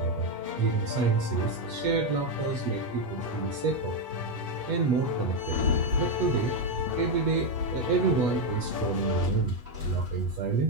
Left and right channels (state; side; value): late; left; 8.2 ms